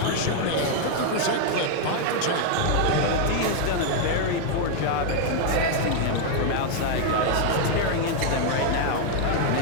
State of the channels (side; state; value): both; different; correlation 0.00